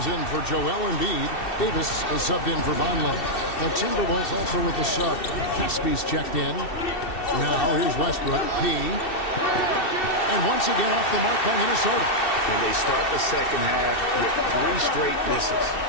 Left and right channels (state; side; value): late; right; 2.7 ms